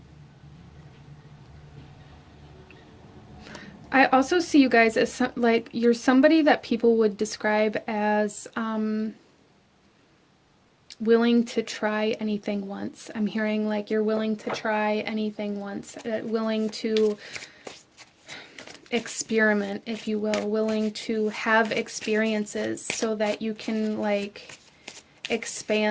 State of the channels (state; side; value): identical; both; correlation 1.00